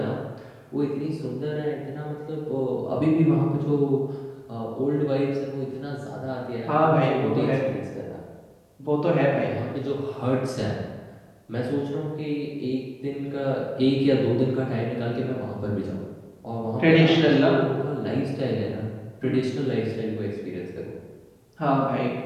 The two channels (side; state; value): both; identical; correlation 1.00